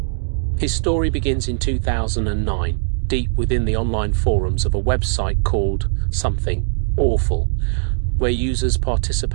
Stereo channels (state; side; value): silent; left; digital silence